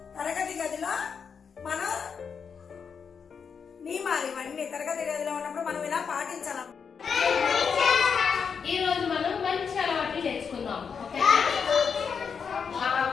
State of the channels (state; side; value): quieter; right; 6.3 dB